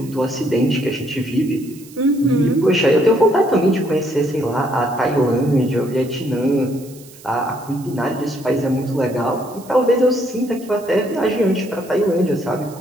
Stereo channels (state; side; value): noise; right; hiss, 22 dB below the sound